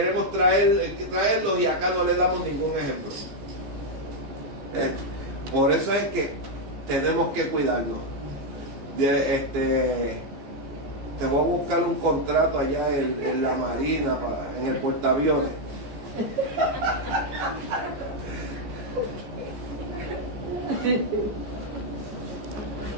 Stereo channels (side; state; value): left; late; 15 ms